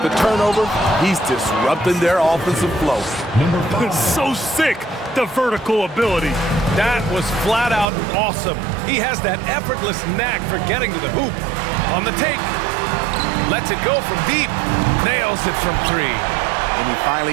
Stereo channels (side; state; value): left; drops out; at 7.9 s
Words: the turnover, he's disrupting their offensive flow. So sick, the vertical ability. That was flat out awesome. He has that effortless knack for getting to the hoop. On the take, lets it go from deep, nails it from 3. And he